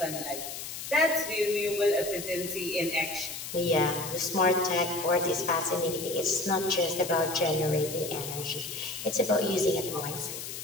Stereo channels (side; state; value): left; noise; hiss, 8 dB below the sound